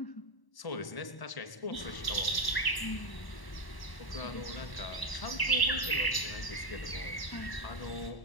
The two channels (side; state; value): right; late; 1.1 ms